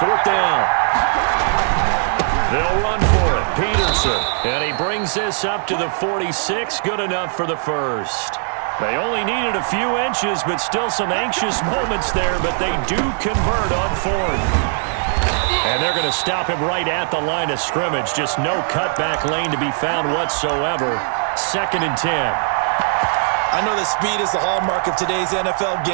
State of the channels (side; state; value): left; silent; 62 dB below the other